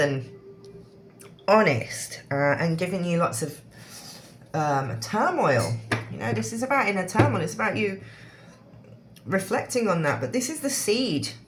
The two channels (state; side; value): identical; both; correlation 1.00